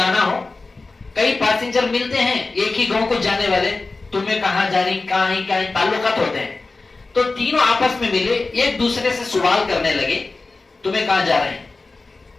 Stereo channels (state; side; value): quieter; right; 3.6 dB